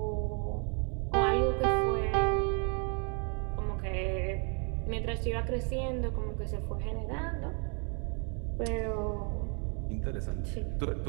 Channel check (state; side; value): quieter; left; 37.8 dB